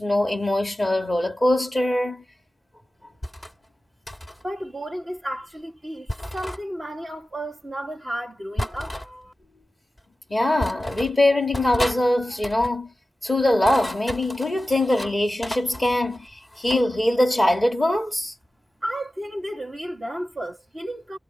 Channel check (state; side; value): normal; both; correlation 0.95